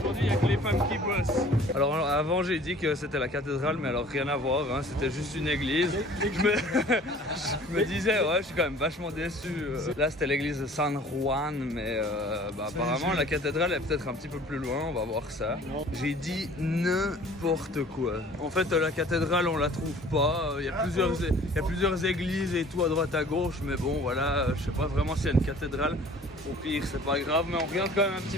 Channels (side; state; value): both; normal; correlation 0.49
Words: il n'y a que les femmes qui bossent. Alors avant, j'ai dit que c'était la cathédrale, mais alors rien à voir, hein. C'était juste une église. Je me disais, ouais, je suis quand même vachement déçu. Là, c'était l'église de San Juan, mais apparemment, la cathédrale est peut-être un petit peu plus loin, on va voir ça. J'ai dit n'importe quoi. En fait, la cathédrale, on la trouve pas. Il y a plusieurs églises et tout à droite à gauche, mais bon, voilà, je sais pas vraiment s'il y a une cathédrale. Au pire, c'est pas grave, mais on regarde quand même un petit